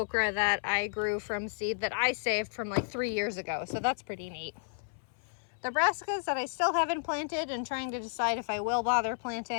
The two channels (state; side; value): silent; right; 56 dB below the other